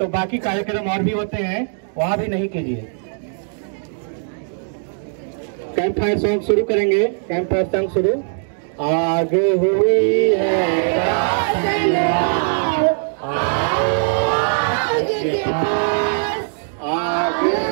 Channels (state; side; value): silent; left; digital silence